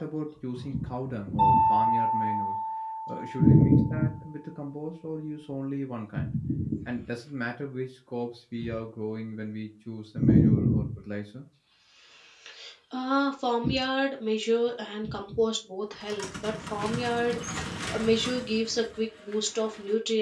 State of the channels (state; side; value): identical; both; correlation 1.00